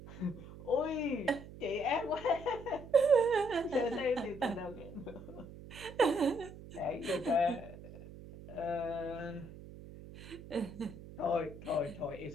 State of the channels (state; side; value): noise; right; hum, 15 dB below the sound